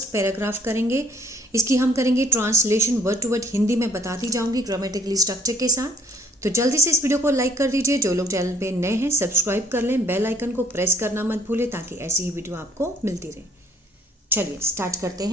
पैराग्राफ करेंगे। इसकी हम करेंगे translation word to word. Hindi में बताती जाऊंगी ग्रामेटिकली स्ट्रक्चर के साथ। तो जल्दी से इस वीडियो को लाइक कर दीजिए। जो लोग चैनल पे नए हैं सब्सक्राइब कर लें, बेल आइकन को प्रेस करना मत भूलें ताकि ऐसी ही वीडियो आपको मिलती रहे। चलिए स्टार्ट करते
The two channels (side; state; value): both; normal; correlation 0.61